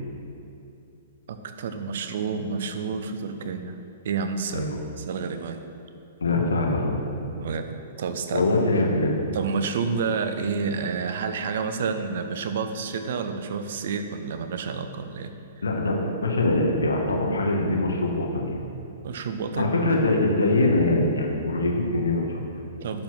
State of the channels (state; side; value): inverted; both; correlation -0.51